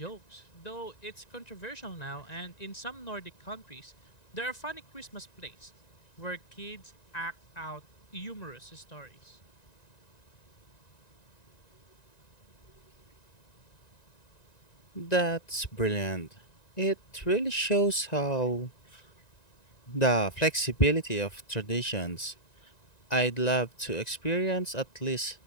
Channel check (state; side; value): late; right; 1.9 ms